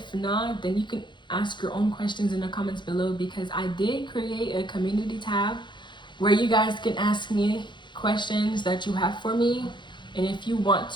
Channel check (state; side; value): late; right; 0.23 ms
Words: not, then you can ask your own questions in the comments below, because I did create a community tab where you guys can ask me questions that you have for me. And if you want